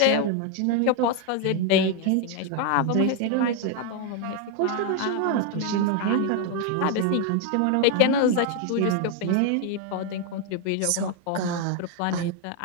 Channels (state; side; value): different; both; correlation 0.01